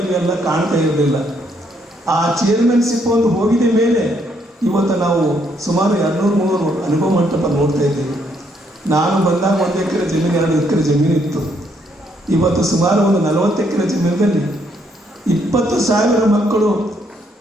ಕಾಣ್ತಾ ಇರಲಿಲ್ಲ. ಆ ಚೇರ್ಮನ್ಶಿಪ್ ಒಂದು ಹೋಗಿದ ಮೇಲೆ ಇವತ್ತು ನಾವು ಸುಮಾರು 200-300 ಅನುಭವ ಮಂಟಪ ನೋಡ್ತಾ ಇದ್ದೀವಿ. ನಾನು ಬಂದಾಗ 1 ಎಕರೆ ಜಮೀನು 2 ಎಕರೆ ಜಮೀನು ಇತ್ತು. ಇವತ್ತು ಸುಮಾರು ಒಂದು 40 ಎಕರೆ ಜಮೀನಿನಲ್ಲಿ 20,000 ಮಕ್ಕಳು,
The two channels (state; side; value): normal; both; correlation 0.72